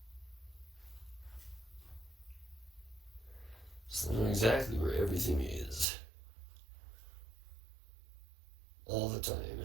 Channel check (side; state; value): left; drops out; at 5.9 s